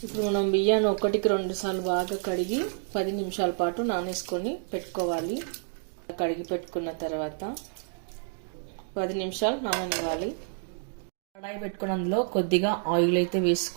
ఇప్పుడు మనం బియ్యాన్ని 1-2 సార్లు బాగా కడిగి 10 నిమిషాల పాటు నానేసుకొని పెట్టుకోవాలి. కడిగి పెట్టుకున్న తర్వాత 10 నిమిషాలు నాననివ్వాలి. కడాయి పెట్టుకుని అందులో కొద్దిగా ఆయిల్ అయితే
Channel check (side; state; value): left; silent; digital silence